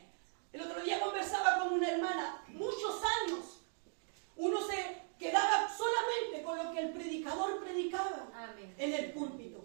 El otro día conversaba con una hermana, muchos años, uno se quedaba solamente con lo que el predicador predicaba Amén. en el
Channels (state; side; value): silent; left; 52 dB below the other